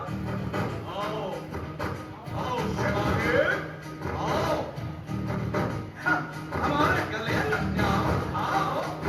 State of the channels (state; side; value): identical; both; correlation 1.00